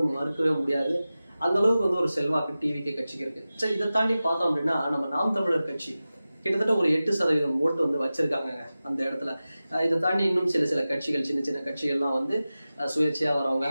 மறுக்கவே முடியாது. அந்த அளவுக்கு வந்து ஒரு செல்வாக்கு டிவிகே கட்சிக்கு இருக்குது. சரி, இதை தாண்டி பார்த்தோம் அப்படின்னா நம்ம நாம் தமிழர் கட்சி கிட்டத்தட்ட ஒரு 8% ஓட்டு வந்து வச்சிருக்காங்க அந்த இடத்துல. இதை தாண்டி இன்னும் சில கட்சிகள், சின்ன சின்ன கட்சிகள்லாம் வந்து சுயேட்சையாக வரவங்க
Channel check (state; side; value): inverted; both; correlation -0.96